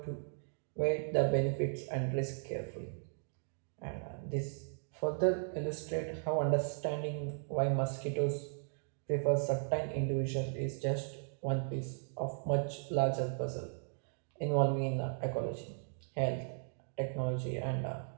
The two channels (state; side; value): silent; left; digital silence